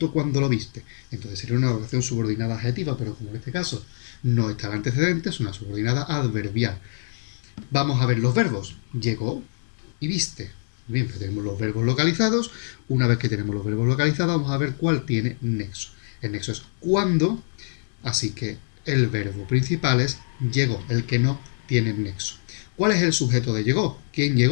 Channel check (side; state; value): right; silent; digital silence